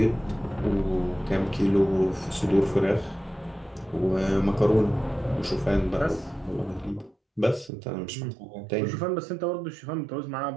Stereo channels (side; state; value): left; drops out; at 7.7 s